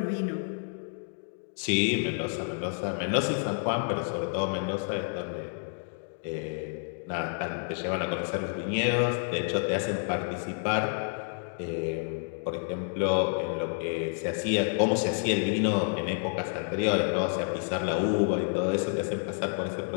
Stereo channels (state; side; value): silent; right; 56 dB below the other